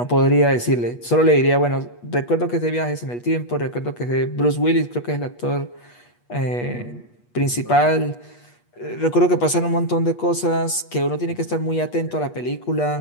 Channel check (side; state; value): right; late; 8.3 ms